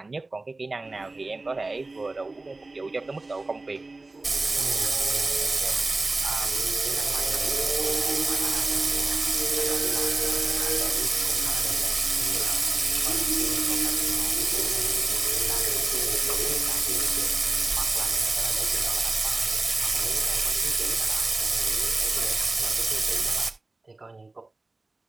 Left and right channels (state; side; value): quieter; left; 3.2 dB